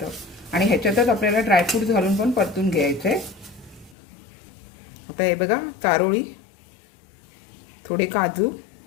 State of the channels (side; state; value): right; drops out; at 4.0 s